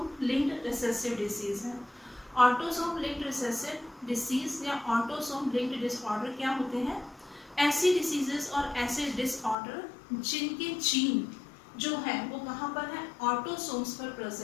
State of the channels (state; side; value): drops out; right; at 9.6 s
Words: लिंक्ड रिसेसिव डिसीज है। ऑटोसोम लिंक्ड रिसेसिव डिसीज या ऑटोसोम लिंक्ड डिसऑर्डर क्या होते हैं? ऐसी डिसीजेस और ऐसे डिसऑर्डर जिनके जीन जो है वो कहाँ पर है? ऑटोसोम्स पर